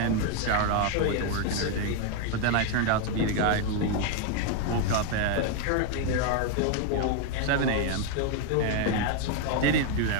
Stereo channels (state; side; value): different; both; correlation 0.01